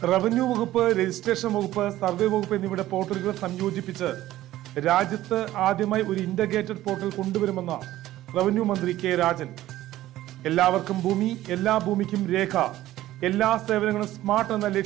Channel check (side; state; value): left; quieter; 14.8 dB